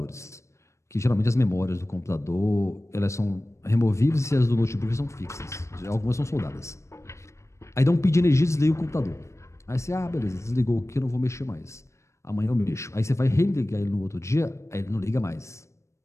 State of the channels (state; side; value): late; right; 0.14 ms